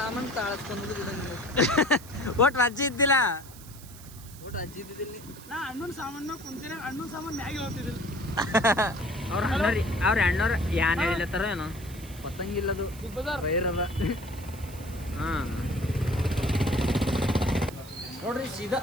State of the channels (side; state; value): right; noise; hiss, 18 dB below the sound